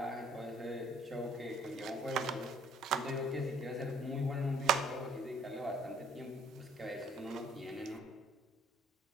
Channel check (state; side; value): normal; both; correlation 0.59